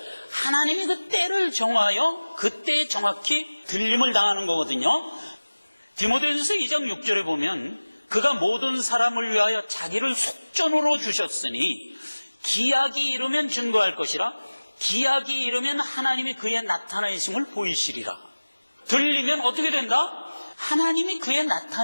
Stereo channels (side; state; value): both; inverted; correlation -1.00